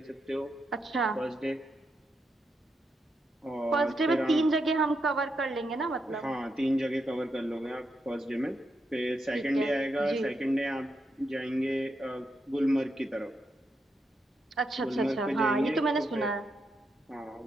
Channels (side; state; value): both; normal; correlation 0.83